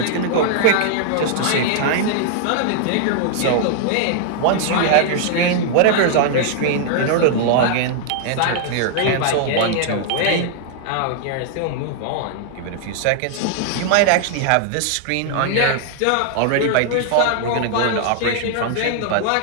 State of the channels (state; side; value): different; both; correlation -0.01